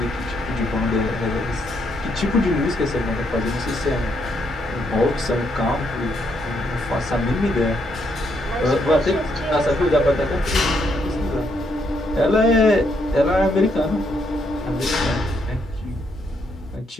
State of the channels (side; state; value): both; normal; correlation 0.75